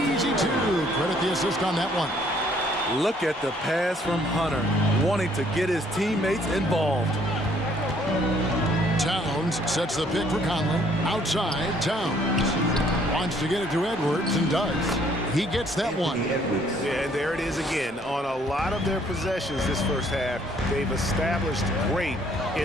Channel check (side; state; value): both; normal; correlation 0.63